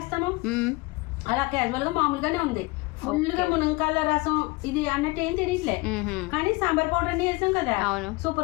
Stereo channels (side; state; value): right; quieter; 24.2 dB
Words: అలా క్యాజువల్ గా మామూలుగానే ఉంది. ఫుల్గా మునక్కాయల రసం ఇది అన్నట్టు ఏం తెలియట్లే, కానీ సాంబార్ పౌడర్ అన్ని వేసాం కదా,